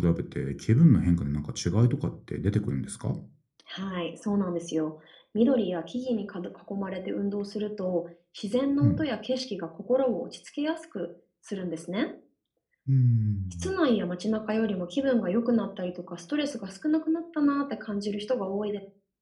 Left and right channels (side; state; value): both; identical; correlation 1.00